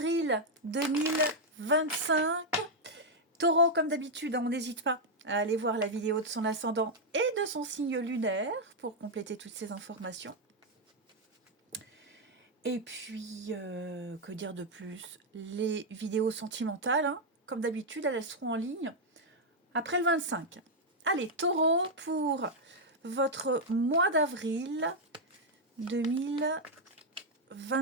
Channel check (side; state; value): both; normal; correlation 0.00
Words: 2025. Taureau, comme d'habitude, on n'hésite pas à aller voir la vidéo de son ascendant et de son signe lunaire pour compléter toutes ces informations. Et puis, que dire de plus? Les vidéos sentimentales, comme d'habitude, elles seront en ligne après le 25. Allez, taureau, pour votre mois d'avril